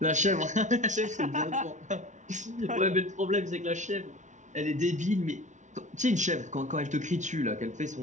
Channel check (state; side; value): late; left; 0.36 ms